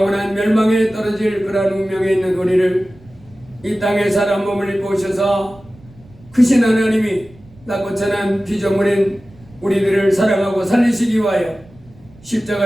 멸망에 떨어질 그러한 운명에 있는 우리를 이 땅에 사람 몸을 입고 오셔서 크신 하나님이 낮고 천한 피조물인 우리들을 사랑하고 살리시기 위하여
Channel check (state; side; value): noise; right; rumble, 25 dB below the sound